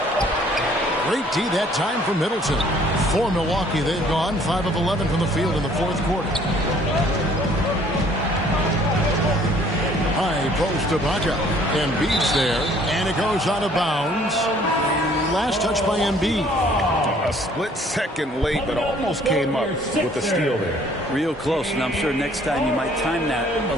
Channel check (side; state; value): both; normal; correlation 0.58